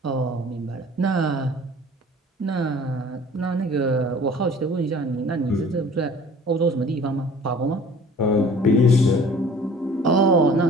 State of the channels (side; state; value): both; normal; correlation 0.48